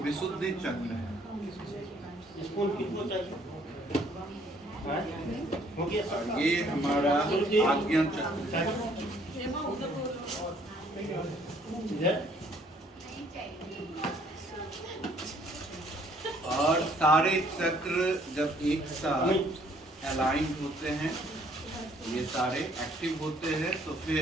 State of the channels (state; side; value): normal; both; correlation 0.62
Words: चक्र है। और ये हमारा आज्ञा चक्र है। और सारे चक्र जब एक साथ अलाइन होते हैं, ये सारे एक्टिव होते हैं, तो